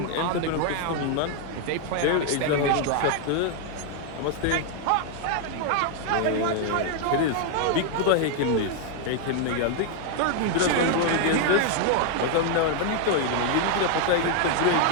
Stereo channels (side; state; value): both; different; correlation 0.00